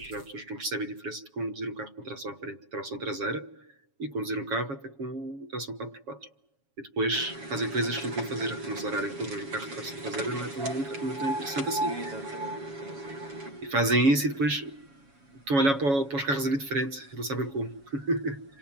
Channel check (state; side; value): late; left; 7.2 ms